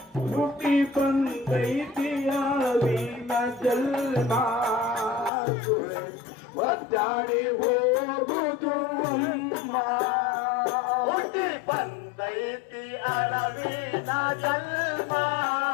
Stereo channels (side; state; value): right; drops out; at 5.3 s